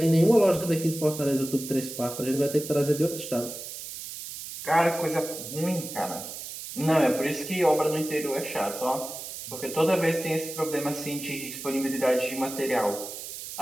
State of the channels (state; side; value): noise; right; hiss, 10 dB below the sound